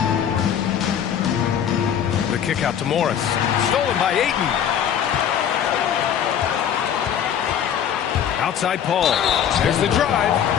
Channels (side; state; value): right; quieter; 9.0 dB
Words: The kick out to Morris. Stolen by Ayton. Outside Paul. There's the drive.